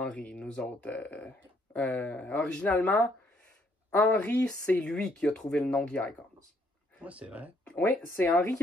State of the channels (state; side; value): normal; both; correlation 0.69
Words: nous autres. Originalement, Henry, c'est lui qui a trouvé le nom The Icons. Ouais, c'est vrai. Oui, c'est Henry qui